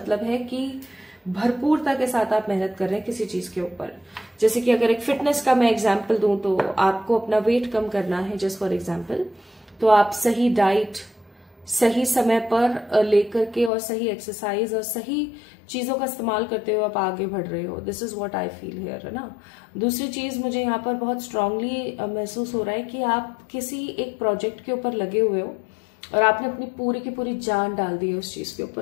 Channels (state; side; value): drops out; right; at 13.7 s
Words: है कि भरपूरता के साथ आप मेहनत कर रहे हैं किसी चीज के ऊपर। जैसे कि अगर एक फिटनेस का मैं एग्जाम्पल दूं तो आपको अपना वेट कम करना है, जस्ट फॉर एग्जाम्पल, तो आप सही डाइट सही समय पर लेकर के और सही एक्सरसाइज और सही चीजों का इस्तेमाल करते हुए आप आगे बढ़ रहे हो। This is what I feel here, है ना। दूसरी चीज मुझे यहाँ पर बहुत स्ट्रांगली महसूस हो रहा है कि आप किसी एक प्रोजेक्ट के ऊपर लगे हुए हो और आपने अपनी पूरी की पूरी जान डाल दी है उस चीज के